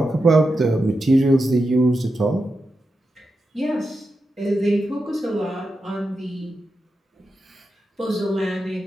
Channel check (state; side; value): normal; both; correlation 0.89